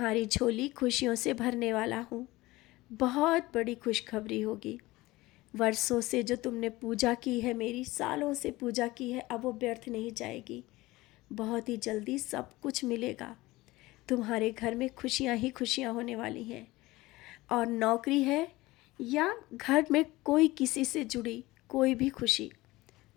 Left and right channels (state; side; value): quieter; right; 19.5 dB